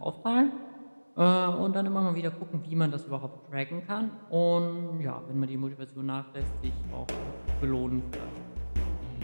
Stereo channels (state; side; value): inverted; both; correlation -1.00